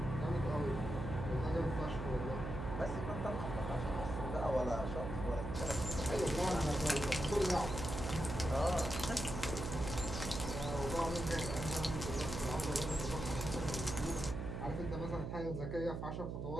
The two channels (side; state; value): right; noise; hum, 4 dB below the sound